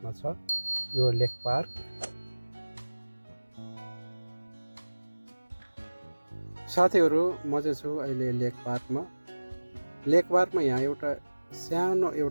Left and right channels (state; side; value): inverted; both; correlation -1.00